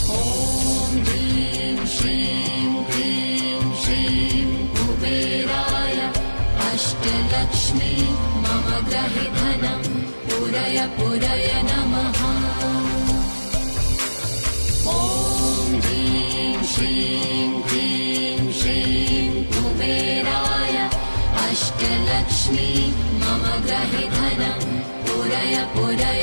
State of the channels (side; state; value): both; inverted; correlation -1.00